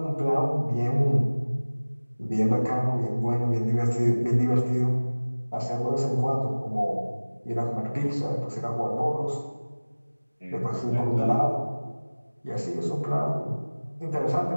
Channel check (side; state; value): both; inverted; correlation -1.00